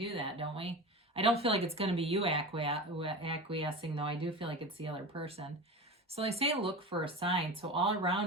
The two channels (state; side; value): normal; both; correlation 0.29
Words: that, don't we? I don't feel like it's going to be you acquiescing, though. I do feel like it's the other person. So they say look for a sign. So all